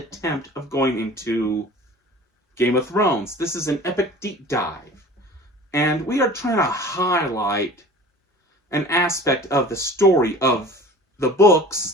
of going into Game of Thrones. This is an epic deep dive, and we are trying to highlight an aspect of the story of the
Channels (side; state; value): both; normal; correlation 0.42